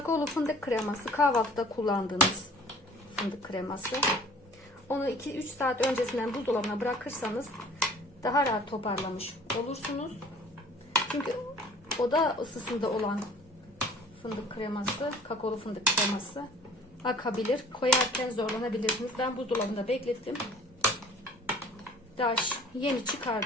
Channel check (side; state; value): both; normal; correlation 0.50